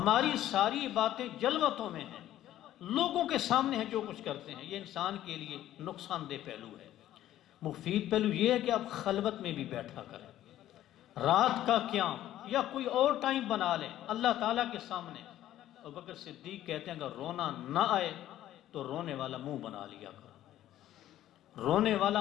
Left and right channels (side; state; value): right; quieter; 13.0 dB